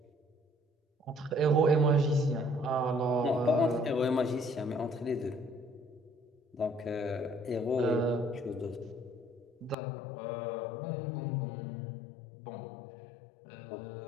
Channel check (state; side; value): drops out; right; at 9.8 s